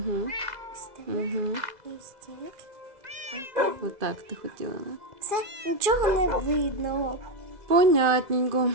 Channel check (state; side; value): late; left; 2.0 ms